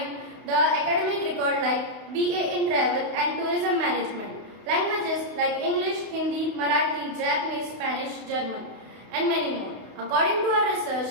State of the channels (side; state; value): left; late; 31 ms